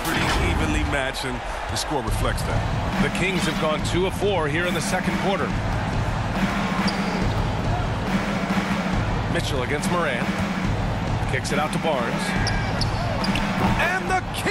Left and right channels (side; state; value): both; identical; correlation 1.00